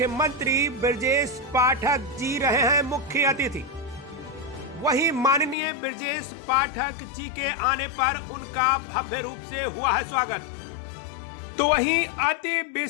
ब्रजेश पाठक जी रहे हैं मुख्य अतिथि। वहीं माननीय ब्रजेश पाठक जी के आने पर उनका भव्य रूप से हुआ है स्वागत। तो वहीं अति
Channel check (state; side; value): drops out; right; at 5.6 s